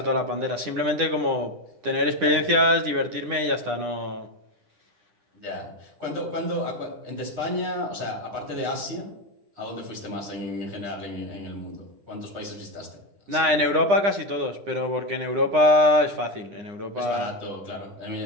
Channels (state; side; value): late; left; 9.9 ms